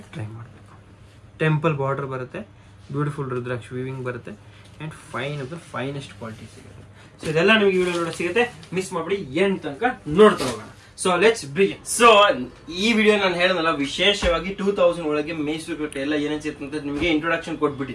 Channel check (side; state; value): both; identical; correlation 1.00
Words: ಟ್ರೈ ಮಾಡಬೇಕು. ಟೆಂಪಲ್ ಬಾರ್ಡರ್ ಬರುತ್ತೆ, ಬ್ಯೂಟಿಫುಲ್ ರುದ್ರಾಕ್ಷ ವೀವಿಂಗ್ ಬರುತ್ತೆ, and fine of the finest quality ಸಿಗುತ್ತೆ. ಸೊ ಇದೆಲ್ಲ ನಿಮಗೆ ವಿಡಿಯೋ ನೋಡೋ ಸಿಗುತ್ತೆ, ಮಿಸ್ ಮಾಡ್ಬಿಡಿ, ಎಂಡ್ ತನಕ ನೋಡ್ತಾ ಹೋಗೋಣ. So let's begin. ಸೊ ಈ ವಿಡಿಯೋ ನಾನು ಹೇಳೋದಲ್ಲ, ವಿಶೇಷವಾಗಿ 2000 ಒಳಗೆ ಮೈಸೂರು ಕ್ರೇಪ್ ಎಲ್ಲ ಏನೇನು ಸಿಗುತ್ತೆ ಅಂತ ನಿಮಗೆ ಇಂಟ್ರೊಡಕ್ಷನ್